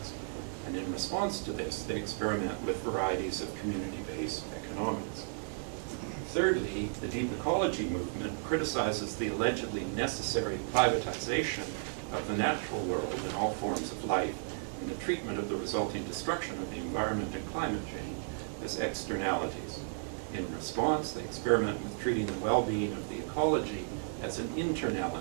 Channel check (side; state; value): left; silent; digital silence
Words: And in response to this, they experiment with varieties of community-based economics. Thirdly, the deep ecology movement criticizes the allegedly necessary privatization of the natural world and all forms of life and the treatment of the resulting destruction of the environment and climate change as externalities. In response, they experiment with treating the well-being of the ecology as an